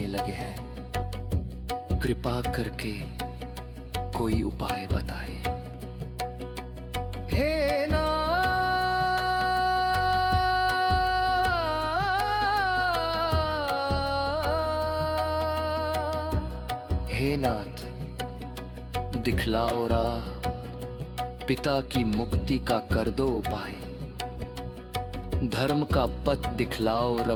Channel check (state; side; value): identical; both; correlation 1.00